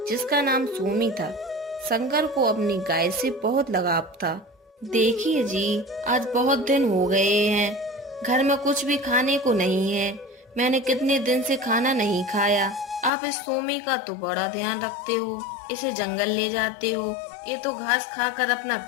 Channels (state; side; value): drops out; right; at 13.1 s